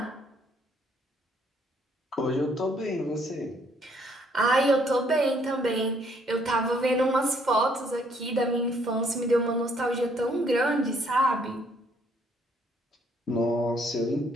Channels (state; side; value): normal; both; correlation 0.67